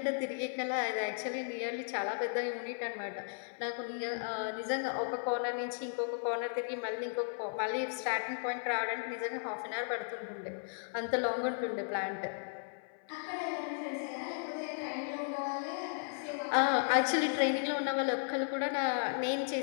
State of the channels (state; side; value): silent; right; 54 dB below the other